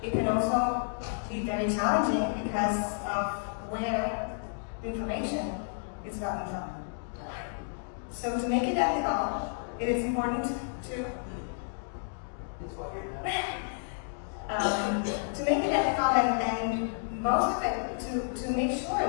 it can also be very challenging because of where information is gotten from. So to make it ethical, it is important to to make it ethical and most of it to make sure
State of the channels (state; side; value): silent; right; digital silence